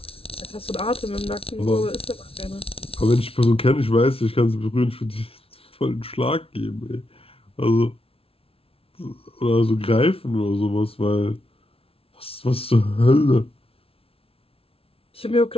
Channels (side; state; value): right; late; 0.27 ms